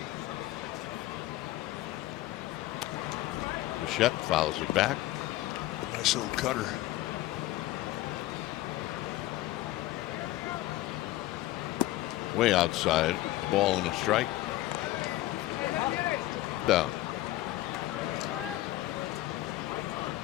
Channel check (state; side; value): quieter; right; 16.3 dB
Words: Bichette fouls it back. Nice little cutter. Way outside. A ball and a strike. Down.